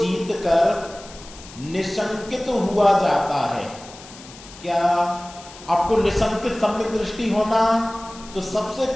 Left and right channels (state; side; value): noise; left; hiss, 18 dB below the sound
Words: कर निशंकित हुआ जाता है। क्या आपको निशंकित सम्यक दृष्टि होना? तो सबसे